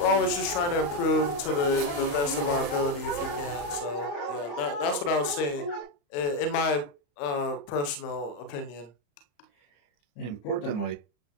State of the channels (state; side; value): late; right; 35 ms